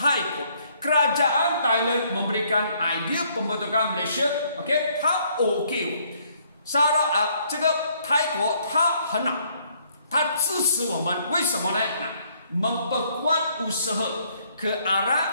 国 Kerajaan Thailand memberikan idea pembentukan Malaysia，OK， 他 OK， 这个泰国他很好，他支持我们，为什么呢？memperkuat usaha ke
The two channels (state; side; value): inverted; both; correlation -0.66